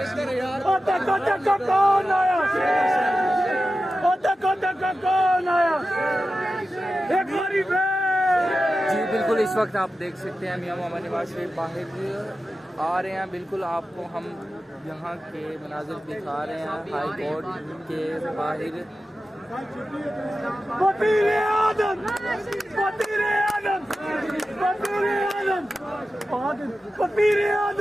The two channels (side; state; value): both; normal; correlation 0.93